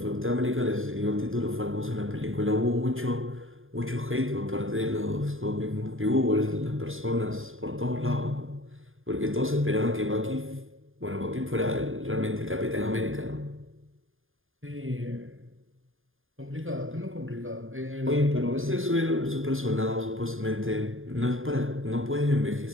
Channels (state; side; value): late; left; 0.59 ms